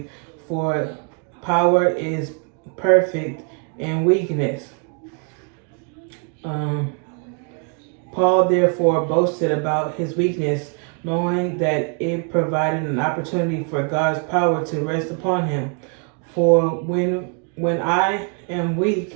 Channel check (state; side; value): quieter; left; 38.7 dB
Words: for power is perfect in weakness." Paul therefore boasted about his weakness, knowing that it provided an opportunity for God's power to rest upon him. For when I am